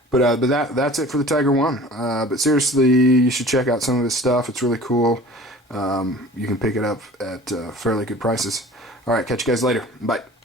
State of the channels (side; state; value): both; normal; correlation 0.44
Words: But that's it for the Tiger One. But seriously, you should check out some of his stuff. It's really cool. You can pick it up at fairly good prices. All right, catch you guys later. Bye.